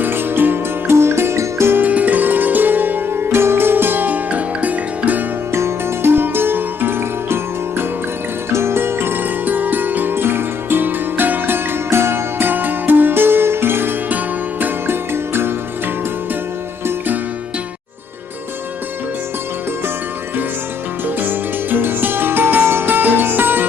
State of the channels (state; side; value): quieter; right; 5.5 dB